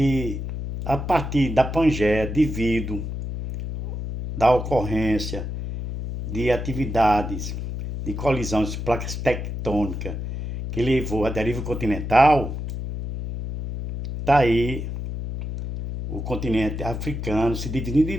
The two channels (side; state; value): left; noise; hum, 5 dB below the sound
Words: a partir da Pangeia, devido da ocorrência de atividades de colisão de placas tectônicas que levou à deriva continental, tá aí o continente africano se dividindo